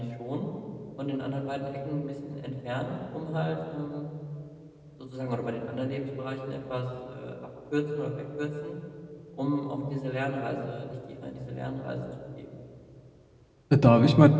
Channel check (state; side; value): identical; both; correlation 1.00